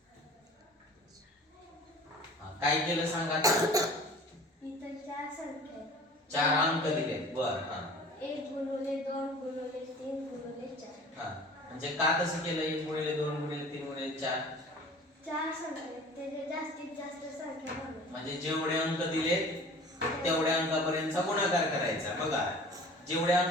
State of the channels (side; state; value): both; normal; correlation 0.44